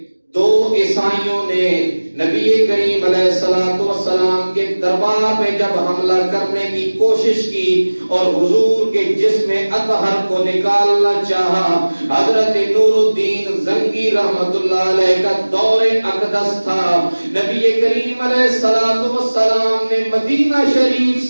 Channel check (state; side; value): inverted; both; correlation -1.00